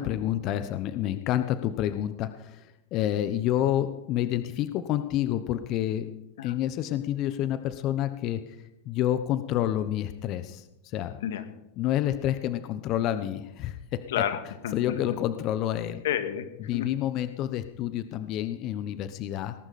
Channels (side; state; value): right; quieter; 11.6 dB